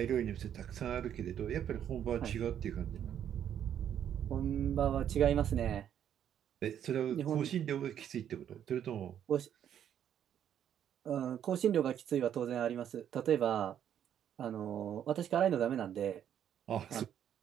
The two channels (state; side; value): quieter; left; 9.7 dB